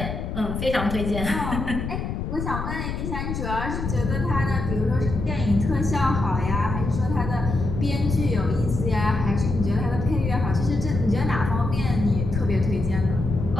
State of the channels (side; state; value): left; noise; rumble, 4 dB below the sound